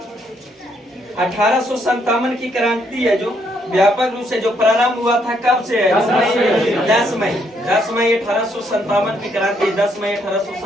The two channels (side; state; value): both; normal; correlation 0.72